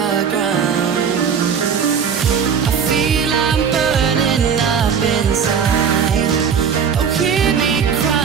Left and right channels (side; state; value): left; quieter; 7.0 dB